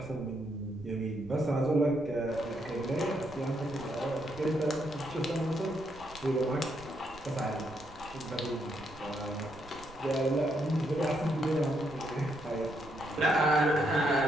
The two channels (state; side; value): noise; right; rumble, 20 dB below the sound